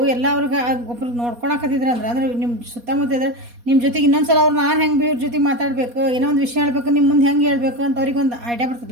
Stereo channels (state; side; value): late; left; 4.2 ms